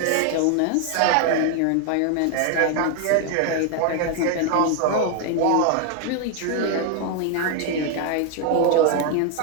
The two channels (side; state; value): both; different; correlation 0.01